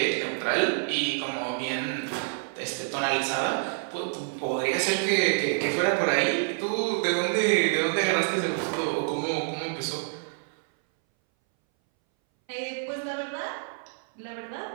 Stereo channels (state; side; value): silent; left; 60 dB below the other